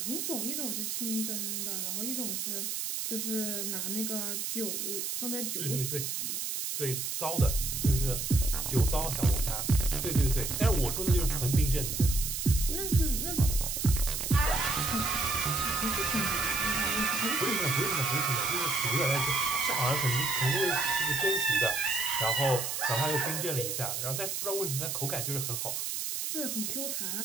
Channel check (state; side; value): noise; right; hiss, 2 dB below the sound